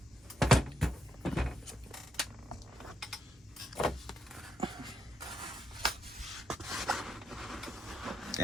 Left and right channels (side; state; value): both; normal; correlation 0.78